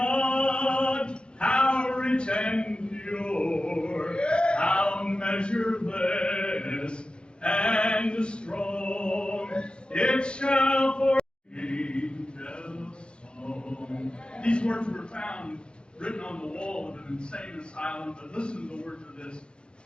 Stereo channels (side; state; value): right; late; 0.054 ms